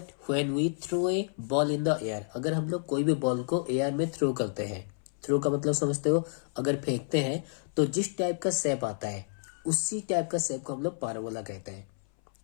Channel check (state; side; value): silent; right; 58 dB below the other